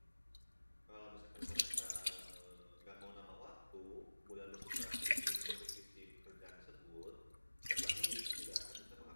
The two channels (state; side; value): inverted; both; correlation -1.00